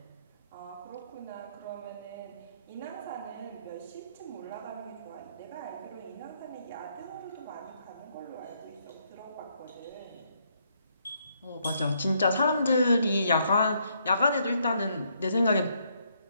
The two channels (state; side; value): inverted; both; correlation -0.73